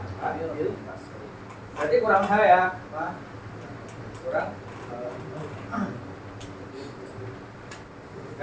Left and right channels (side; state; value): both; identical; correlation 1.00